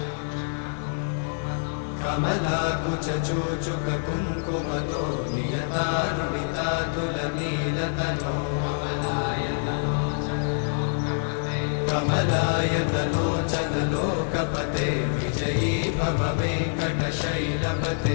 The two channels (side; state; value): right; silent; digital silence